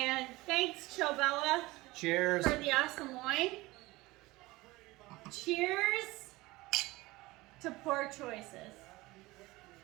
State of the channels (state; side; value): quieter; left; 20.6 dB